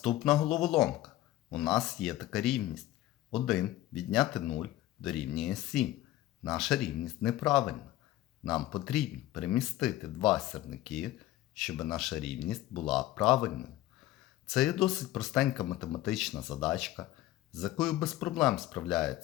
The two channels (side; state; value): right; quieter; 15.2 dB